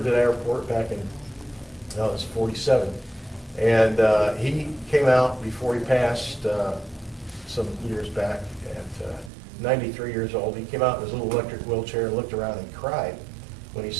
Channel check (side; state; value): left; drops out; at 9.3 s